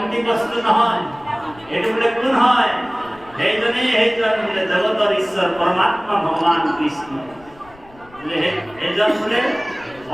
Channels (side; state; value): left; noise; rumble, 25 dB below the sound